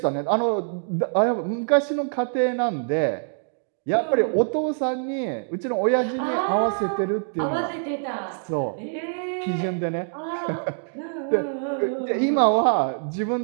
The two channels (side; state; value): left; silent; digital silence